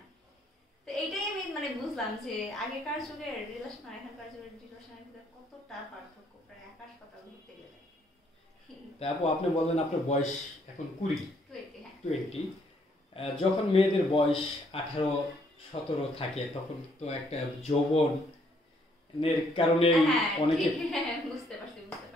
তো এইটাই আমি মানে বুঝলাম যে আগেকার যুগের রিলেশন আর এখনকার যুগের রিলেশনের ভিতরে কতটা পার্থক্য, প্রায় আকাশ পাতাল ঘুরতে গেলে। তারপর আপনি বললেন আপনার বয়স এখন 20, হ্যাঁ 20। যখন মেয়েদের বয়স 18-17 থাকে তখন তো একটা যৌবনের কারণে হ্যাঁ অনেকে, বুঝতে পারছি বুঝতে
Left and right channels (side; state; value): both; normal; correlation 0.68